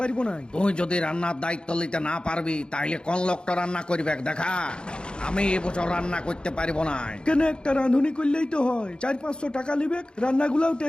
পারবো না। তুই যদি রান্নার দায়িত্ব নিতে না পারবি তাইলে কোন লোকটা রান্না করবে দেখা। আমি এবছর রান্না করতে পারবো না। কেন একটা রাঁধুনি করলেই তো হয়, 400-500 টাকা নিবে, রান্নাগুলাও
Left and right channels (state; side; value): late; right; 0.051 ms